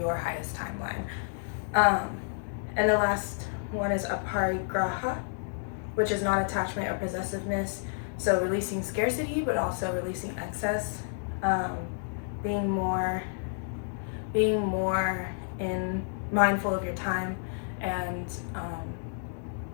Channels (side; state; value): right; silent; digital silence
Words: highest timeline. And the last one is aparigraha, which is non-attachment or possessiveness. So releasing scarcity, but also releasing excess, being more mindful of your time, and